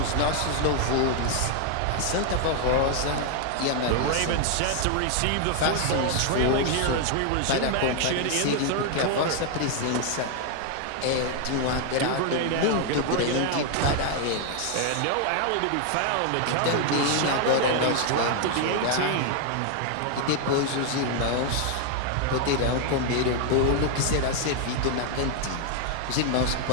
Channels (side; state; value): both; different; correlation 0.00